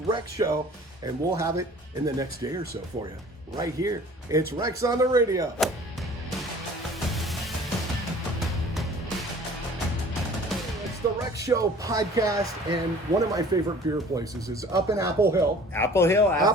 Rec show, and we'll have it in the next day or so for you. Right here. It's Rex on the radio. The Rec Show podcast, and one of my favorite beer places is up in Applehill. Applehill,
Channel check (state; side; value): normal; both; correlation 0.48